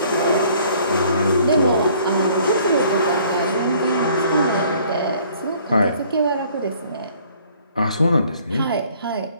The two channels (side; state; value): both; inverted; correlation -0.57